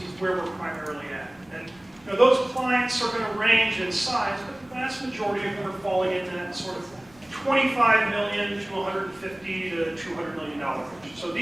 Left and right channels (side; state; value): left; noise; rumble, 29 dB below the sound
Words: where we're primarily at. And those clients are going to range in size, but the vast majority of them are falling in that sort of $25 million to $150 to $200 million range. So